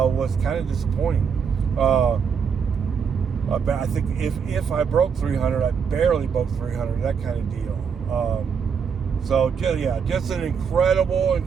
kind of disappointing. I think if I broke 300, I barely broke 300. That kind of deal. So yeah, just an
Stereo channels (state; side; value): quieter; left; 6.5 dB